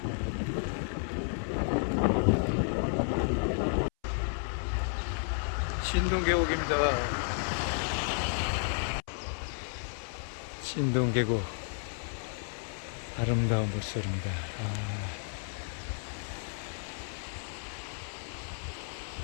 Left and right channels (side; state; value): right; silent; 56 dB below the other